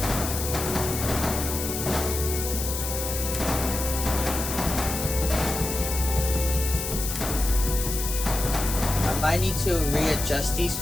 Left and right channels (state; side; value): noise; left; hiss, 4 dB below the sound